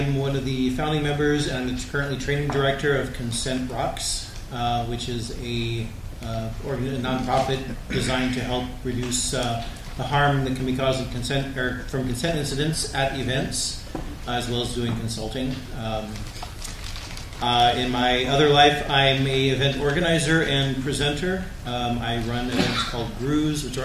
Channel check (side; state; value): both; identical; correlation 1.00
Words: one of the founding members and I'm currently training director of Consent Rocks, which is a nonprofit designed to help reduce the harm that can be caused from consent incidents at events, as well as doing consulting. In my other life, I'm a event organizer and presenter. I run events called Grews, which